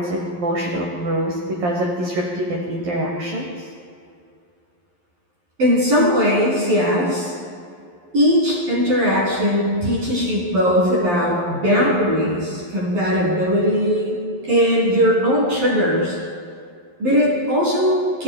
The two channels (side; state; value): left; late; 11 ms